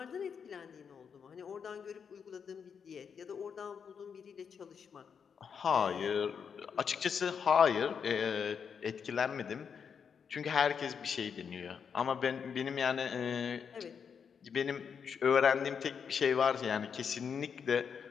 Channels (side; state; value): right; quieter; 6.8 dB